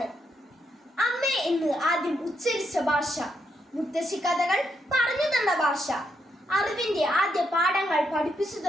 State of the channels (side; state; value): both; normal; correlation 0.79